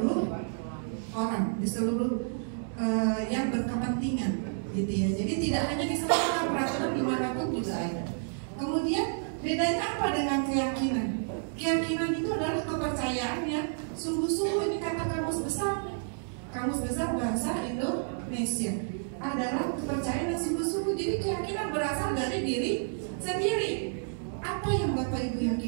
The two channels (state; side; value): silent; left; digital silence